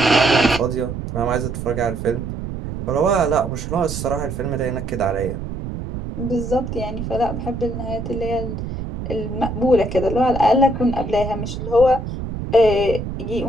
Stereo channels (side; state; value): right; noise; rumble, 6 dB below the sound